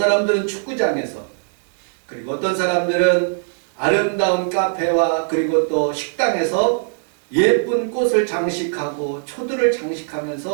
축구장에서 그리고 어떤 사람들은 아름다운 카페와 그리고 또 식당에서 예쁜 꽃을 장식하고 초들을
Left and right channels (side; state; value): left; silent; 66 dB below the other